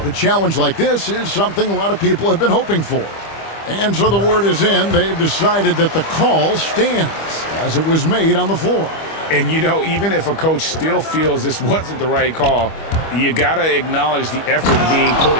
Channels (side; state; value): right; late; 25 ms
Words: to challenge like this is something a lot of people have been hoping for. And so the word is in. They've decided that the call stands as it was made on the floor. And, you know, even if a coach still feels this wasn't the right call, you got to acknowledge the effort being put